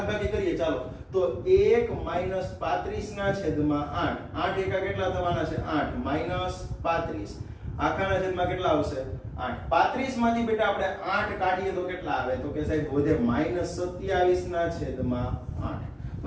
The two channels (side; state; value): both; identical; correlation 1.00